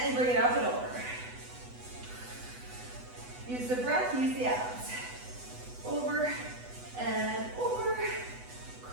bring it up and over. Use the breath, use the abs. Over and over.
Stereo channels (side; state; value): left; late; 8.1 ms